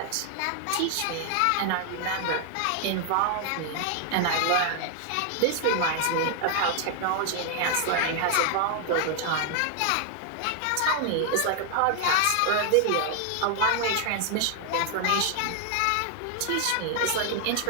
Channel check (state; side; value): different; both; correlation 0.00